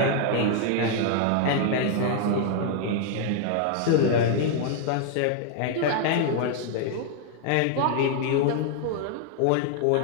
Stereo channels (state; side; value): different; both; correlation 0.00